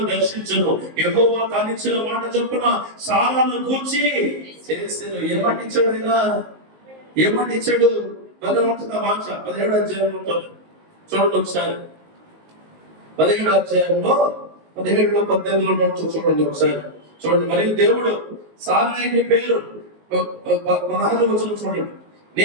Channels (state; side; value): late; left; 19 ms